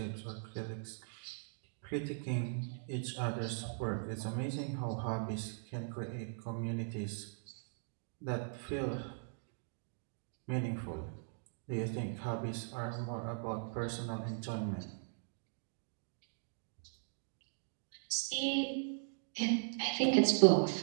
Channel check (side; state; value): left; silent; digital silence